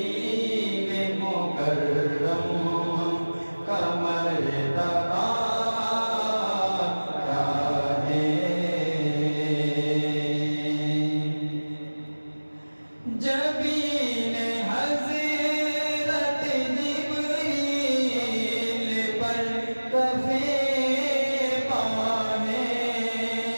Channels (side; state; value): both; inverted; correlation -1.00